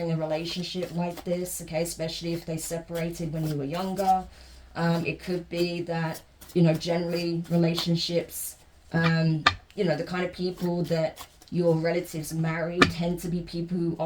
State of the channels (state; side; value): identical; both; correlation 1.00